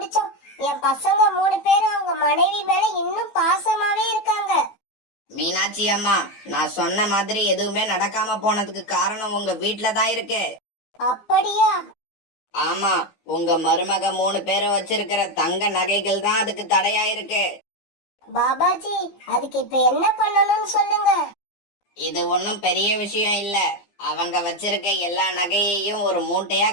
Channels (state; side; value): late; right; 15 ms